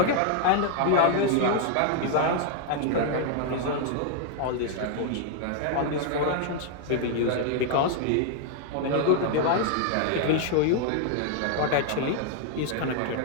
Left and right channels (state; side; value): different; both; correlation 0.00